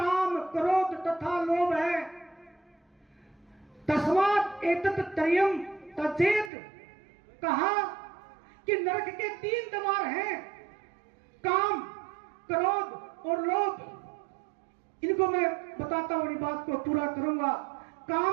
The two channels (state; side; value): drops out; left; at 6.5 s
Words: क्रोध तथा लोभ है, तस्मात् एतत् त्रयम् त्यजेत। कहा कि नरक के 3 द्वार हैं, काम, क्रोध और लोभ। इनको मैं बताता हूं, बात को पूरा करूंगा।